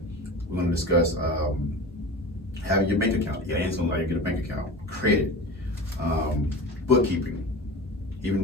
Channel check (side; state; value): both; normal; correlation 0.32